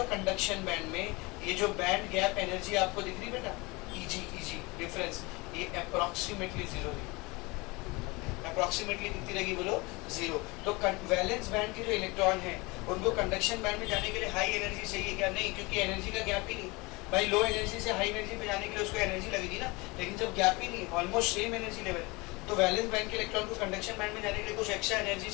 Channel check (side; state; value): right; quieter; 25.0 dB